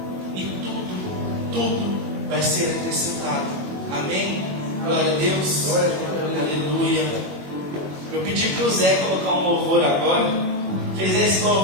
E tudo vai ser acrescentado. Amém? Glória a Deus. Aleluia. Eu pedi para o Zé colocar um louvor agora. Fez esse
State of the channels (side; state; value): left; late; 21 ms